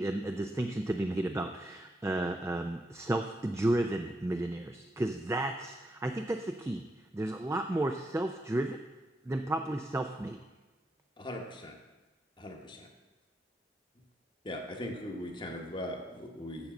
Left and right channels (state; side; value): normal; both; correlation 0.81